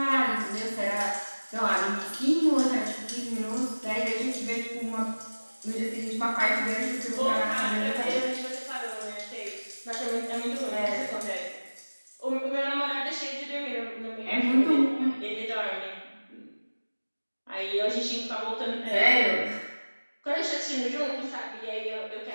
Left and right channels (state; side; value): inverted; both; correlation -1.00